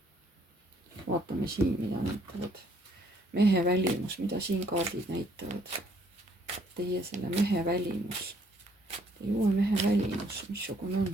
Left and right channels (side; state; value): both; normal; correlation 0.65